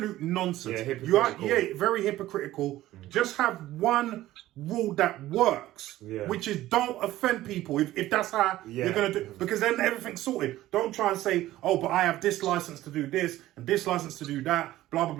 nonsense. Yeah, hypocritical. Very hypocritical. Just have one rule that works, which is don't offend people if that's how you're going to do, because then everything's sorted. Don't try and say, oh, but I have this license to do this and this license to do that, blah, blah,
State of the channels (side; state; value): left; quieter; 15.3 dB